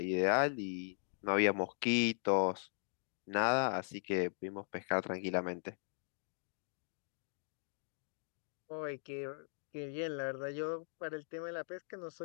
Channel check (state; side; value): silent; right; digital silence